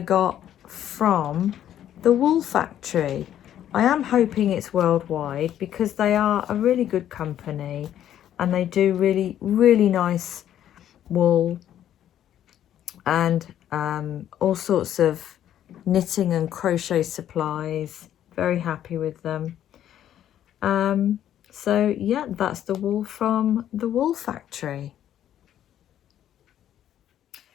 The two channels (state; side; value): quieter; right; 11.0 dB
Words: from the Wool Factory. I am hoping it's worldwide, because they are a really good company and they do really nice wool and all sorts of knitting and crochet supplies. Very happy with them. So yeah, that's the wool from the Wool Factory.